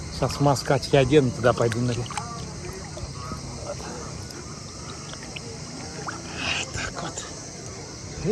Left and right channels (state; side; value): identical; both; correlation 1.00